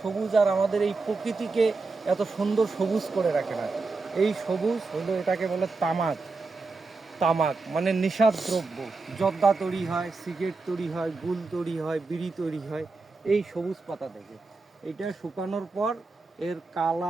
সবুজ আর আমাদের এই প্রকৃতিকে এত সুন্দর সবুজ করে রাখে না। এই সবুজ হলো, এটাকে বলে তামাক। তামাক মানে নেশার দ্রব্য। জর্দা তৈরি হয়, সিগারেট তৈরি হয়, গুল তৈরি হয়, বিড়ি তৈরি হয় এই সবুজ পাতা থেকে। এটা শুকানোর পর এর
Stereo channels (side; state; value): left; quieter; 3.9 dB